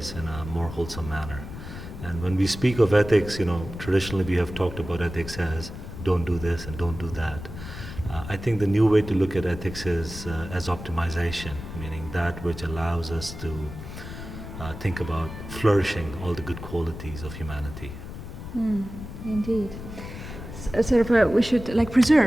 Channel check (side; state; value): left; noise; rumble, 11 dB below the sound